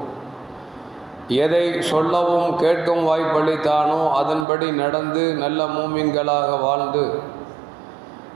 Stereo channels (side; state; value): left; drops out; at 4.5 s